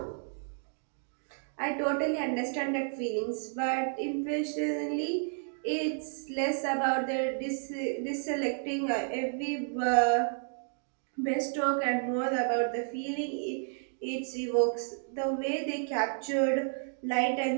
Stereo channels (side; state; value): left; silent; digital silence